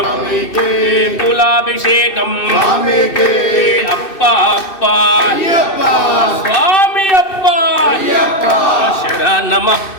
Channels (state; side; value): late; right; 2.6 ms